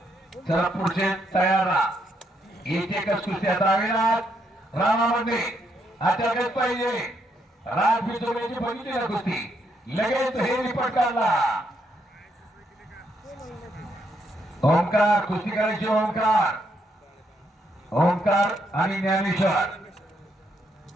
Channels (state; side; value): normal; both; correlation 0.76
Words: चला पुढचे तयार राहा. एक एकच कुस्त्या दावेनाथ रामामध्ये अटकत पाहिजे. राज बिचोल्याची बघितली ना कुस्ती, लगेच हे रिपोर्ट काढला. ओंकार कुस्ती करायची. ओंकार ओंकार आणि ज्ञानेश्वर